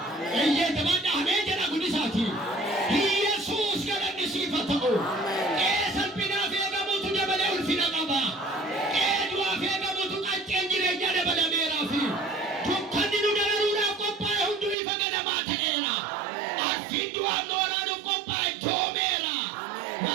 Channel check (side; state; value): left; drops out; at 14.8 s